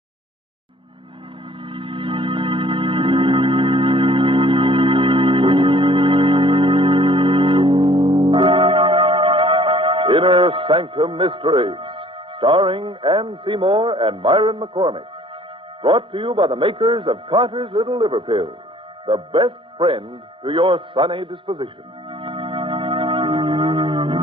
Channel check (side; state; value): both; normal; correlation 0.55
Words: Innersanctum Mysteries, starring Ann Seymour and Myron McCormick. Brought to you by the makers of Carter's Little Liver Pills, the best friend to your sunny disposition.